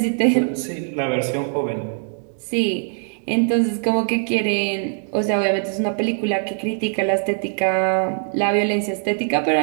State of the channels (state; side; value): silent; left; digital silence